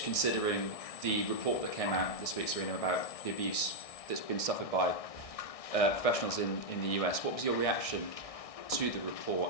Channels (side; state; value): right; late; 1.6 ms